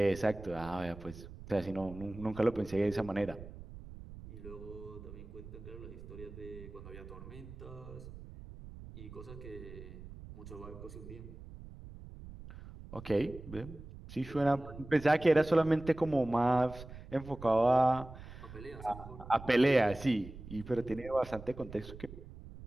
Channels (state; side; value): noise; right; rumble, 14 dB below the sound